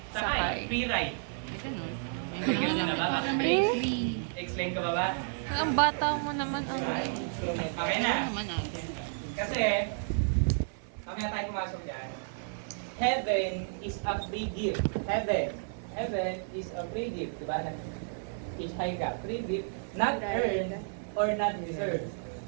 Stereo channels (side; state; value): left; silent; 57 dB below the other